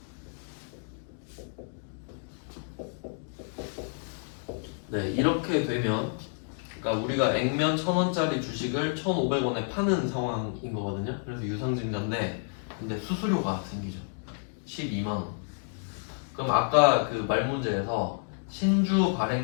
네, 이렇게 되면 그러니까 우리가 액면 1,000원짜리 주식을 1,500원에 파는 상황인 거거든요. 그래서 유상증자인데 근데 수수료가 생기죠. 12만 원. 그럼 아까 그 말 문제에서 신주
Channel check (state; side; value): silent; right; digital silence